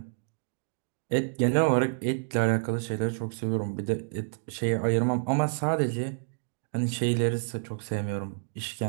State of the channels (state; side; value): silent; left; digital silence